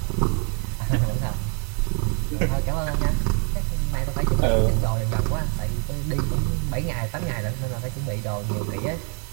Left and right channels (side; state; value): left; quieter; 35.1 dB